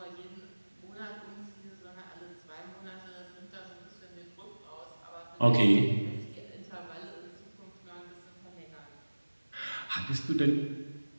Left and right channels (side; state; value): both; inverted; correlation -1.00